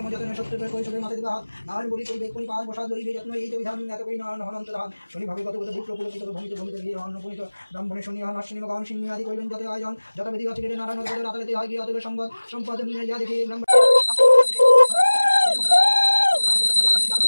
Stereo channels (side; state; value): both; inverted; correlation -1.00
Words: যতনে সত্য কৈশোরের মাথা দিবে হাত নারায়ণ বলি করবে কোন পাঁচ বসা ধরিবে যত্ন এই যে বিধান এত করি নারায়ণ হনন্ত ধান শনি ভাবে কত বিপ্র পুলকিত ভূমিতে ভূমিতে গিয়ে অন্নপূর্ণিত ব্রাহ্মণের শনি হন অশ্বিনী গান সিংহ আদি কইলেন যত আয়োজন যত বিধি আছে নারায়ণ রাতারাতি হয় গিয়ে অতবে সম্পদ নিয়ে যা দেখি ব্রাহ্মণ